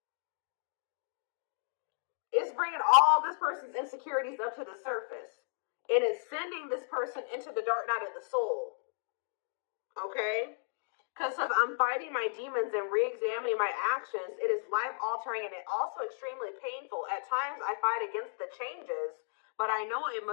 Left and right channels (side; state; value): right; silent; digital silence